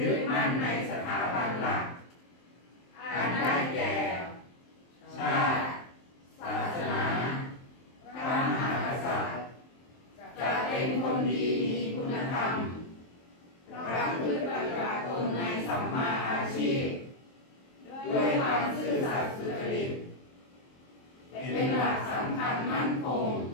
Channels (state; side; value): late; right; 23 ms